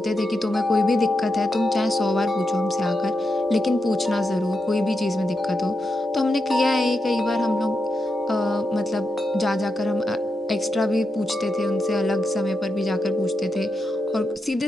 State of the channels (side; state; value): both; normal; correlation 0.86